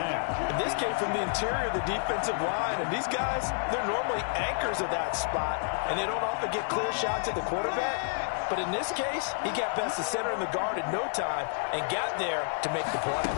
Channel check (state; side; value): silent; right; digital silence